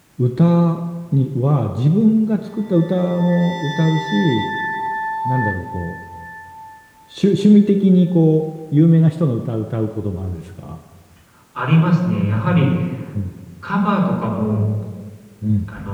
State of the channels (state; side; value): identical; both; correlation 1.00